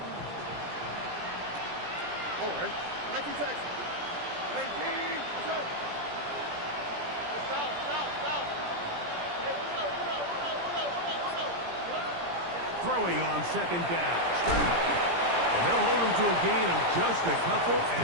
Throwing on 2nd down. Stroud. And they'll hold him to a gain of just a couple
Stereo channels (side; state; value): left; late; 17 ms